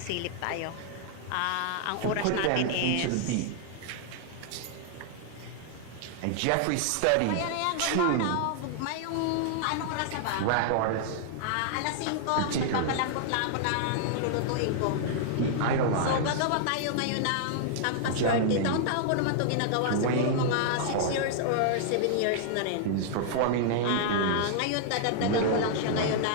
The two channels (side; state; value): both; different; correlation -0.01